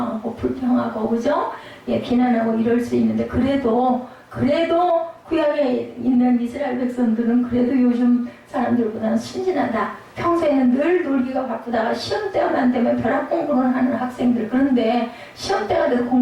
불평하고, 그죠? 예, 비난하고 이럴 수 있는데, 그래도 구약에 있는 이스라엘 백성들은 그래도 요즘 사람들보다는 순진하다. 평소에는 늘 놀기가 바쁘다가 시험 때만 되면 벼락 공부를 하는 학생들, 그런데 시험 때가 돼도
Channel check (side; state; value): both; identical; correlation 1.00